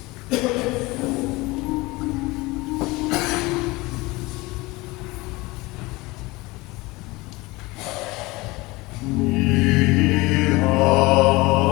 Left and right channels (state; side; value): quieter; right; 22.3 dB